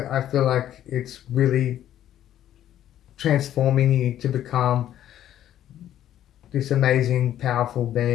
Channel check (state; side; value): quieter; right; 11.6 dB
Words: I feel like it's really transforming you to become this amazing, powerful